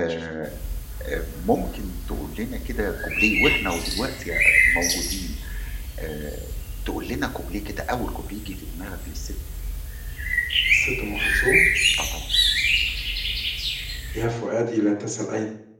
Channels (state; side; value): identical; both; correlation 1.00